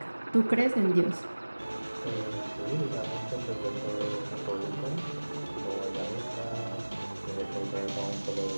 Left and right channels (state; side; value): inverted; both; correlation -1.00